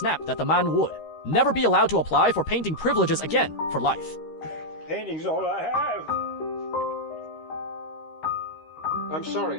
that the man would never be allowed to apply for painting privileges again for life. Painting's all I have. I'm sorry,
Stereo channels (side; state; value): right; late; 13 ms